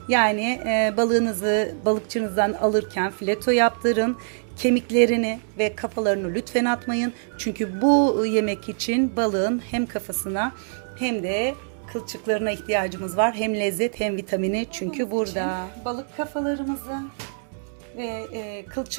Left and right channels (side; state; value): left; silent; 62 dB below the other